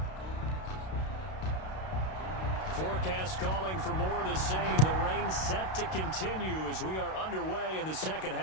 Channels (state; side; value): late; right; 32 ms